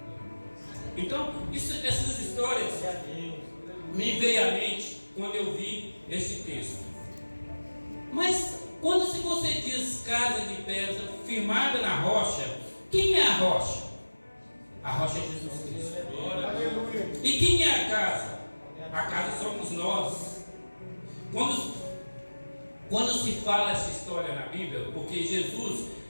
Então, essas histórias me veio à mente quando eu vi esse texto. Mas quando se você diz casa de pedra firmada na rocha, quem é a rocha? A rocha é Jesus Cristo. E quem é a casa? A casa somos nós. Quando se fala essa história na Bíblia, porque Jesus,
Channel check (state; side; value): inverted; both; correlation -1.00